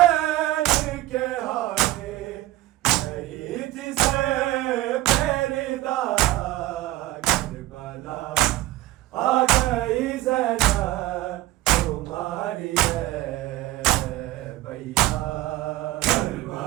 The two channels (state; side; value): quieter; left; 16.6 dB